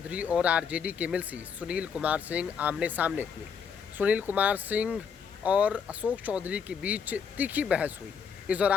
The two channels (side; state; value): right; quieter; 6.6 dB